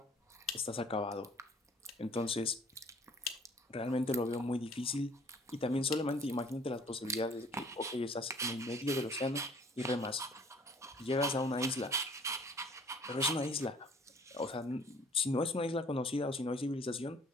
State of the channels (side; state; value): both; normal; correlation 0.54